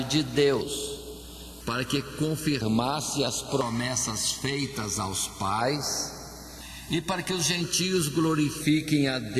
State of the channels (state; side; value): identical; both; correlation 1.00